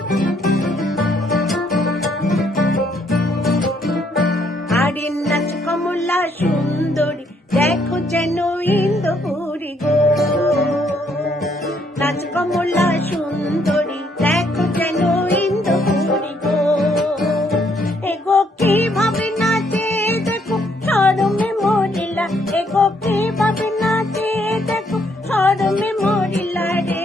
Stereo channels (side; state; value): both; normal; correlation 0.70